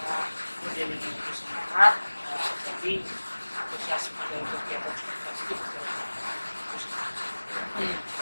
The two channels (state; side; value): inverted; both; correlation -1.00